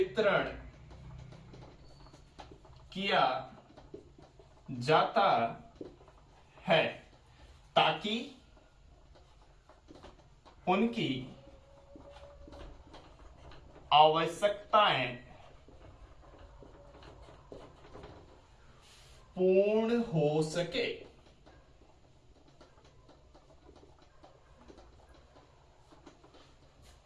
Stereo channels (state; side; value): identical; both; correlation 1.00